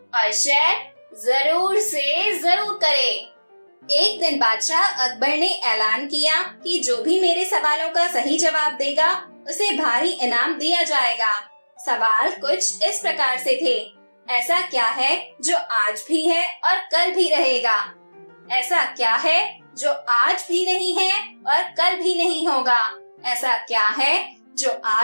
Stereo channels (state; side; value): inverted; both; correlation -1.00